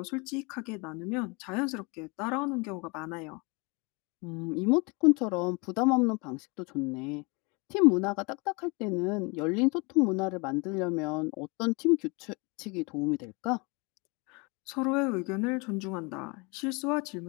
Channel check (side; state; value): right; quieter; 29.1 dB